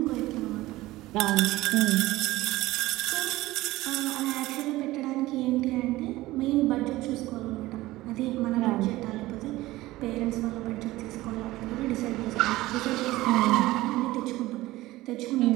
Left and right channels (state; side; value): quieter; left; 17.8 dB